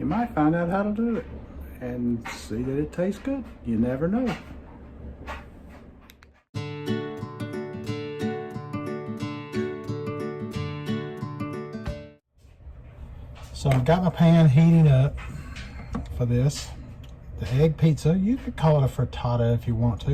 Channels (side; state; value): both; identical; correlation 1.00